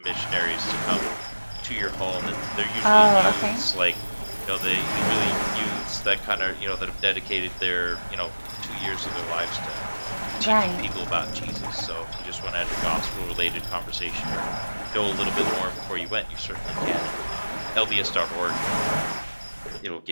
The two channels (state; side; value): inverted; both; correlation -1.00